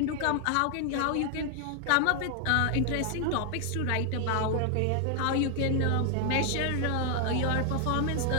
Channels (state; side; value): different; both; correlation 0.00